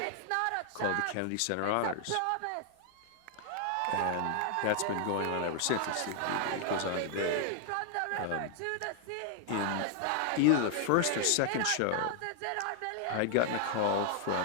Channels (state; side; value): different; both; correlation 0.00